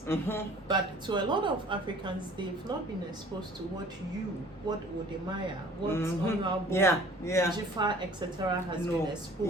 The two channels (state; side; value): normal; both; correlation 0.50